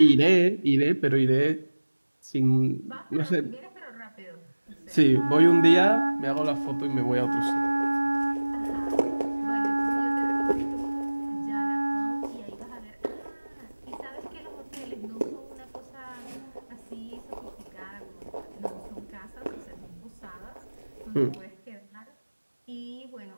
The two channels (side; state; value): both; inverted; correlation -1.00